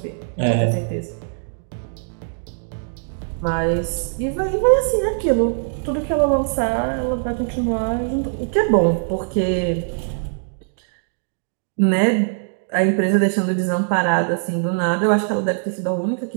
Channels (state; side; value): silent; left; digital silence